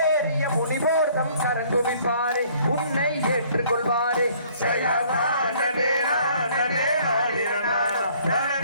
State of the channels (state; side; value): inverted; both; correlation -0.58